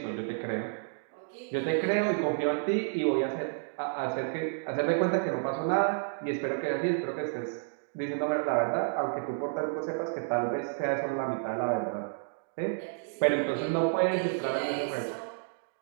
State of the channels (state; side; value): silent; left; digital silence